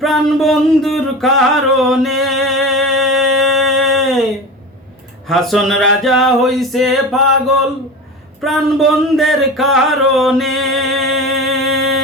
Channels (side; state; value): both; normal; correlation 0.30